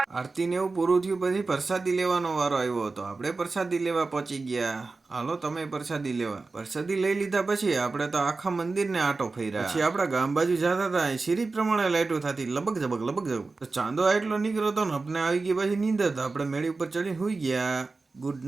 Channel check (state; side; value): quieter; left; 3.8 dB